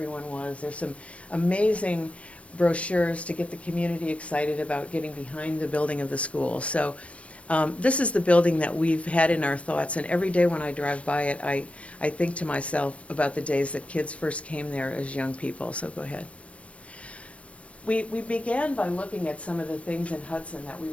was. There's some amazing brochures to get the community excited about getting behind the building of the school. So this is the building that we've had in our thoughts, and every day when I drive by it, I think to myself about the days that kids first came there as young people. So go ahead. We began by looking at some of the things in Hudson that we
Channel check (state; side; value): late; right; 0.063 ms